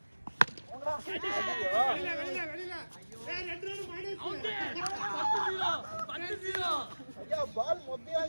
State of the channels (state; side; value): inverted; both; correlation -1.00